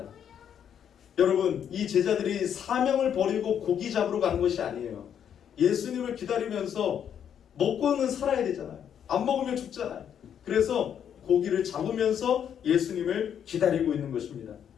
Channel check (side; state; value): right; quieter; 8.8 dB